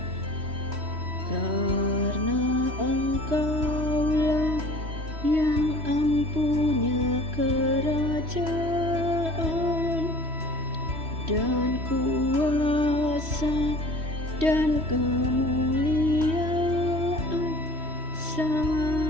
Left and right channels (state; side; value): late; left; 3.1 ms